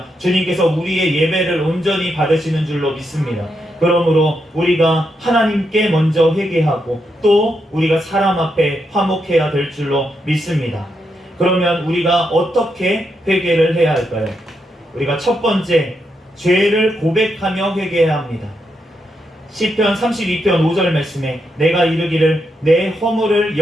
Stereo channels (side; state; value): both; normal; correlation 0.82